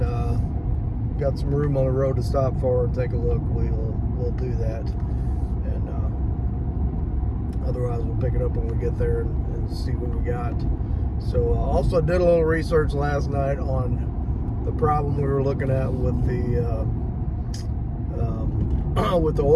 got some room on the road to stop for and take a look, we'll do that. And otherwise we'll pick it up when we get there and see what we got. So also did a little research last night on the problem we were looking at with the with the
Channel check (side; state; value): both; identical; correlation 1.00